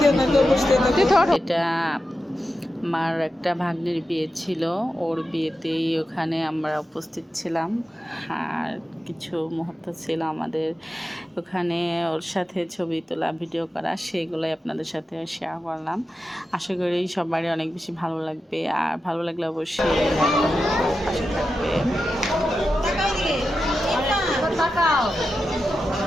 এটা আমার একটা ভাগ্নির বিয়ে ছিল, ওর বিয়েতেই ওখানে আমরা উপস্থিত ছিলাম। আর কিছু মুহূর্ত ছিল আমাদের ওখানে ওর সাথে ছবি তোলা, ভিডিও করা, সেগুলোই আপনাদের সাথে শেয়ার করলাম। আশা করি সবারই অনেক বেশি ভালো লাগবে। আর ভালো লাগলে অবশ্যই পাশে থাকবে।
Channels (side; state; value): both; normal; correlation 0.90